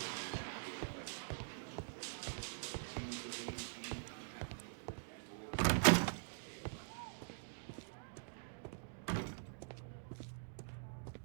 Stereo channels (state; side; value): silent; left; digital silence